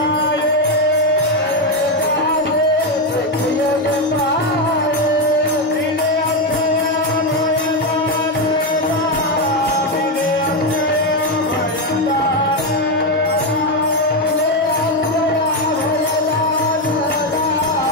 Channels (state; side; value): normal; both; correlation 0.07